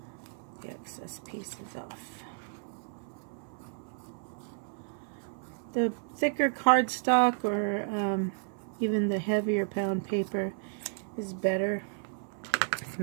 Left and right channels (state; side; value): silent; left; 56 dB below the other